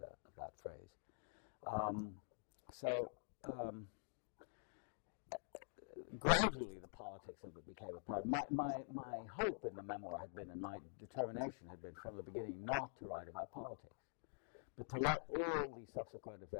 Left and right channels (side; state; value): right; silent; digital silence